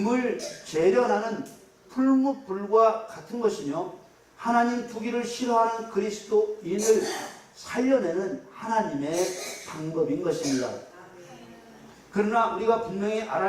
재련하는 풀무불과 같은 것이며 하나님 두기를 싫어하는 그리스도인을 살려내는 하나님의 방법인 것입니다. 그러나 우리가 분명히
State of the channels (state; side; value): identical; both; correlation 1.00